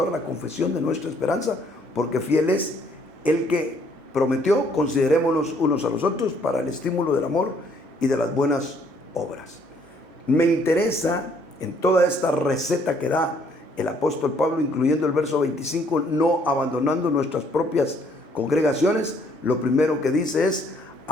la confesión de nuestra esperanza, porque fiel es el que prometió. Considerémonos unos a los otros para el estímulo del amor y de las buenas obras. Me interesa en toda esta receta que da el apóstol Pablo, incluyendo el verso 25, no abandonando nuestras propias congregaciones, lo primero que dice es,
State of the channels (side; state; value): left; late; 2.1 ms